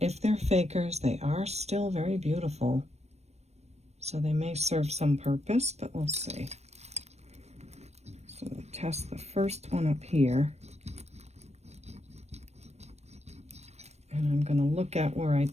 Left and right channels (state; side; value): late; left; 0.31 ms